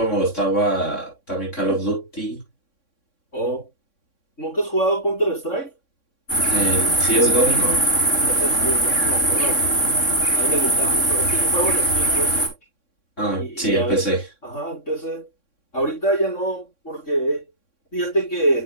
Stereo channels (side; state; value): right; late; 3.6 ms